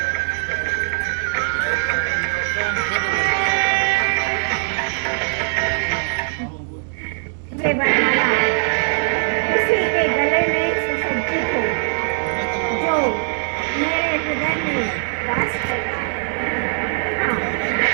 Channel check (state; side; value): silent; left; digital silence